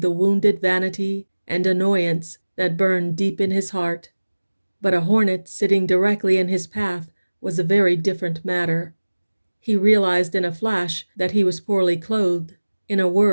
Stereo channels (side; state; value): both; inverted; correlation -1.00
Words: the wounded vanity and annoyance that burned deep in his heart. But a hornet sitting directly in his path was a very different matter. He realized in a flash that he was poorly clothed, in a